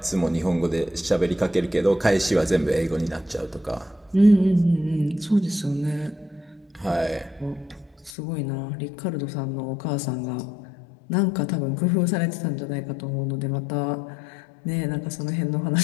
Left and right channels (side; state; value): right; drops out; at 8.1 s